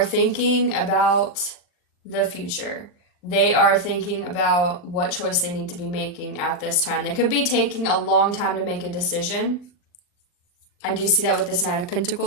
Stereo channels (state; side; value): late; right; 39 ms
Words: thinking about the future. They are thinking about what choice they need to be making at this time. They could be taking a long time to make a decision. I do see that with this Knight of